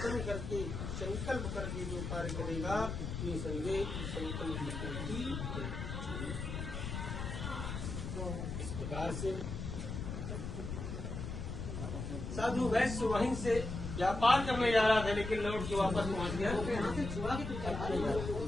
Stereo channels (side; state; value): left; noise; rumble, 5 dB below the sound